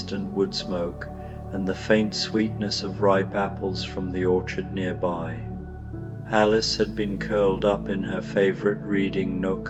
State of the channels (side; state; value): both; identical; correlation 1.00